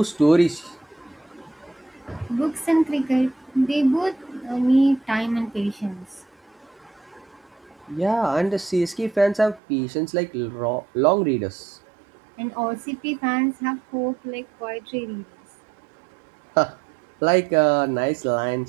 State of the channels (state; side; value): drops out; left; at 9.6 s